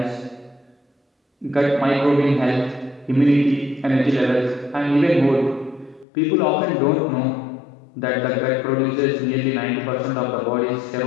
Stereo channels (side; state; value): right; drops out; at 6.1 s